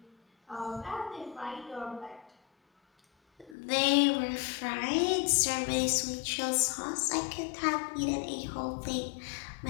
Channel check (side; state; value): right; drops out; at 3.6 s